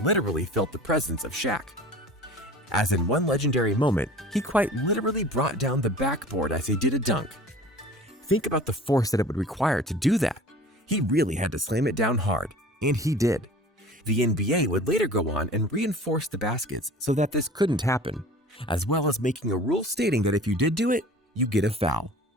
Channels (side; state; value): both; normal; correlation 0.42